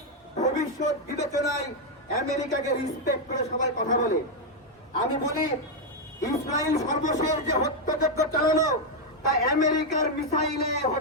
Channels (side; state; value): both; normal; correlation 0.02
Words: ভবিষ্যৎ বিবেচনায় আমেরিকাকে রিসপেক্ট করে সবাই কথা বলে। আমি বলি, ইসরায়েল সর্বশেষ যে হত্যাযজ্ঞ চালালো তা আমেরিকার মিসাইলে